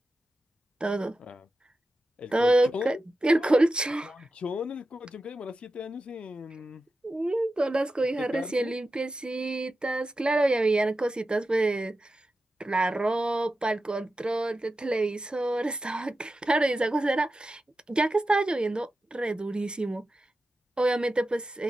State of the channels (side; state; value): both; normal; correlation 0.92